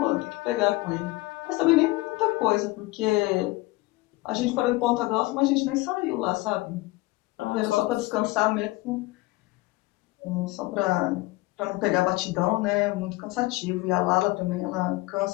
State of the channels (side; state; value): right; quieter; 20.8 dB